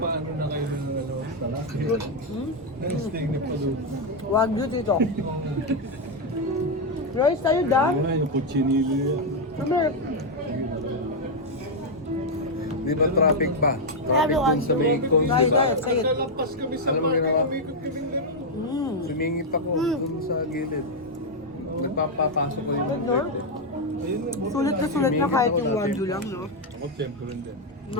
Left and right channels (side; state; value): both; normal; correlation 0.01